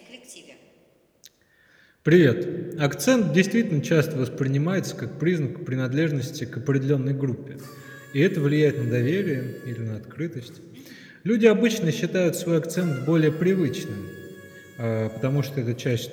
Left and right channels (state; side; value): identical; both; correlation 1.00